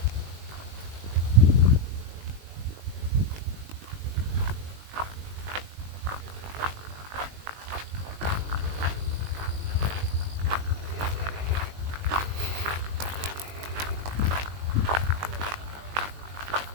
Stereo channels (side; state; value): left; late; 20 ms